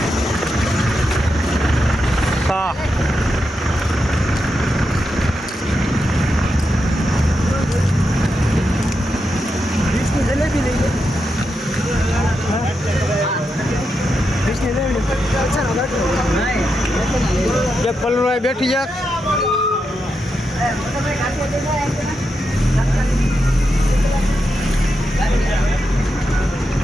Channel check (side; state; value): both; normal; correlation 0.86